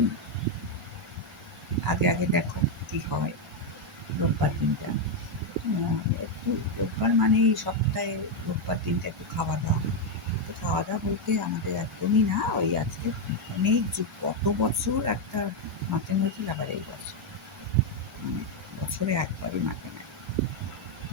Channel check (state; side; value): normal; both; correlation 0.02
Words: আগে দেখো কি হয় রোববার দিনটা। একটু রোববার মানেই সপ্তাহে রোববার দিনটা একটু খাওয়া দাওয়া। তো খাওয়া দাওয়া বলতে আমাদের একদমই না, ওই আজকে অনেক যুগ কত বছর একটা মাটন হয়েছিল, আবার এই বছর মানে বছরে একবারই মাটন হয়।